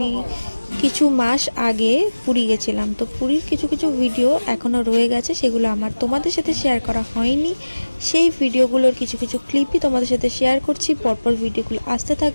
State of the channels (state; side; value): inverted; both; correlation -1.00